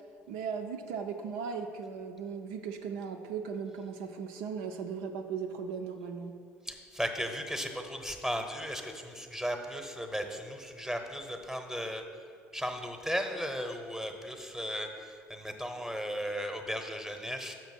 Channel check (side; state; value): both; normal; correlation 0.69